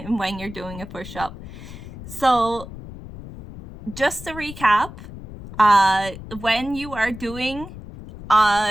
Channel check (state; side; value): noise; left; rumble, 13 dB below the sound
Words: you're doing a push-up. So just to recap, when you are doing